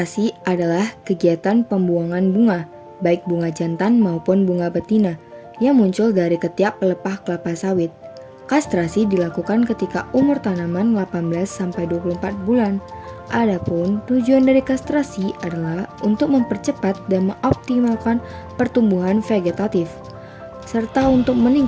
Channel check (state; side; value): identical; both; correlation 1.00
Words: adalah kegiatan pembuangan bunga, baik bunga jantan maupun bunga betina, yang muncul dari ketiak pelepah kelapa sawit. Kastrasi dilakukan ketika umur tanaman 18-24 bulan. Adapun tujuan dari kastrasi adalah untuk mempercepat dan mengoptimalkan pertumbuhan vegetatif. serta untuk